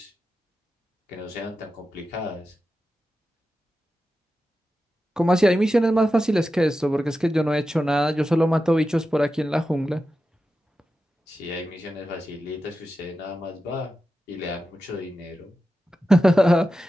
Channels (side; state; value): both; normal; correlation 0.92